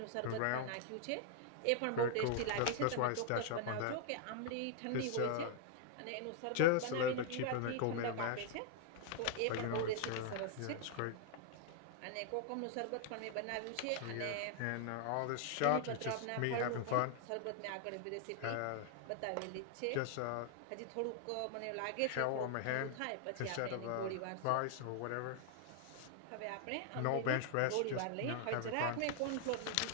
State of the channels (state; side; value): different; both; correlation 0.00